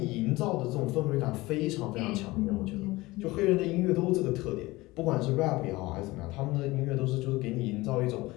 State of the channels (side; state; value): right; quieter; 20.5 dB